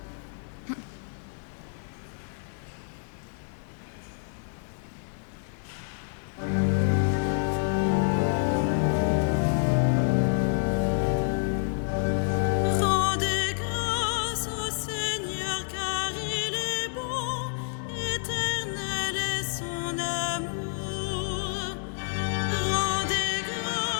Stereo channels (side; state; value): right; silent; digital silence